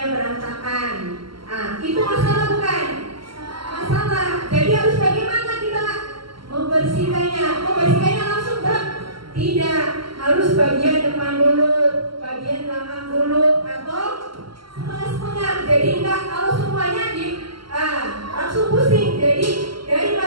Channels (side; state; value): left; late; 0.74 ms